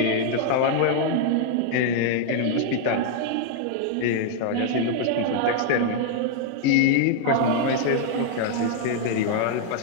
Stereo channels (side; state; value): both; different; correlation 0.00